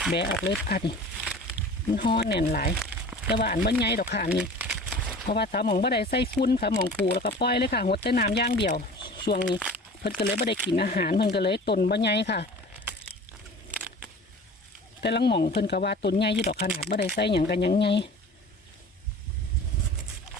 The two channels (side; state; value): both; normal; correlation 0.41